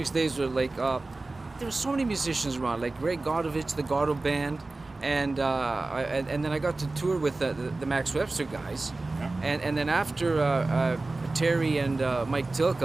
days were there were so many musicians around, like Ray Godovich, the Gordo Band, and then I got to tour with the Max Webster guys, and then after Terry and Mike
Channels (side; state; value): left; quieter; 3.2 dB